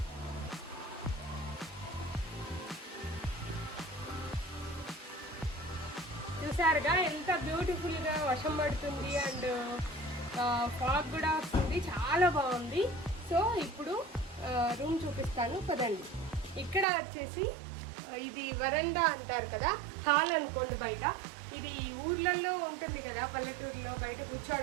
చూసారుగా ఎంత బ్యూటిఫుల్గా వర్షం పడుతుంది అండ్ ఫాగ్ కూడా వస్తుంది, చాలా బాగుంది. సో ఇప్పుడు రూమ్ చూపిస్తాను పదండి. ఇక్కడ వచ్చేసి ఇది వరండా అంటారు కదా, హాల్ అనుకోండి. బయట ఇది ఊర్లలో ఉంటుంది కదా, పల్లెటూరులో బయట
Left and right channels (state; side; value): drops out; left; at 16.9 s